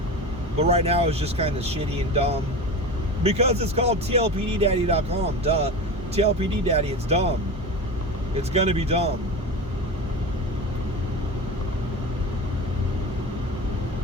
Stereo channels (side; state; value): both; normal; correlation 0.28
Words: But right now it's just kind of shitty and dumb. Because it's called TLPDdaddy.com. Duh. TLPD Daddy, it's dumb. It's gonna be dumb.